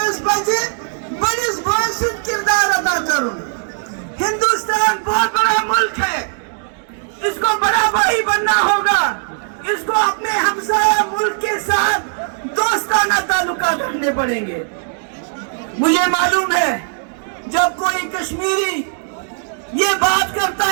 پزِ بڑس بھائی سۭتۍ کردار ادا کرن ہندوستان بہت بڑا ملک ہے اس کو بڑا بھائی بننا ہوگا اس کو اپنے ہمسایہ ملک کے ساتھ دوستانہ تعلقات رکھنے پڑیں گے مجھے معلوم ہے جب کوئی کشمیری یہ بات کرتا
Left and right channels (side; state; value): left; silent; digital silence